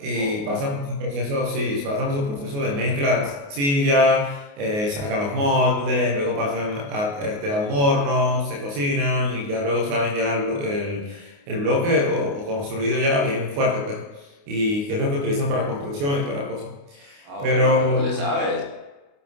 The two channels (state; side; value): late; left; 28 ms